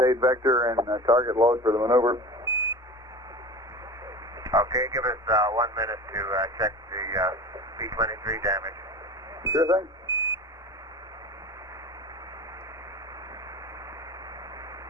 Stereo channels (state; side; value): normal; both; correlation 0.34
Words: vector and target load for the maneuver. Okay, give us 1 minute to check the B-23 damage. Sure thing.